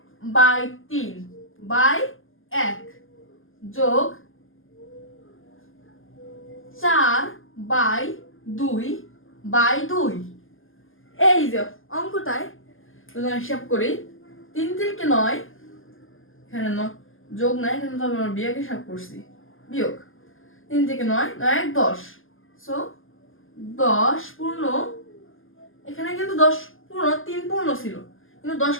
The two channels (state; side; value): late; right; 0.59 ms